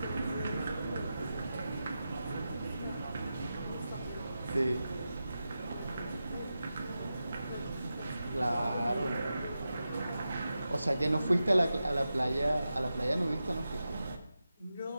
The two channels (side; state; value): both; inverted; correlation -0.91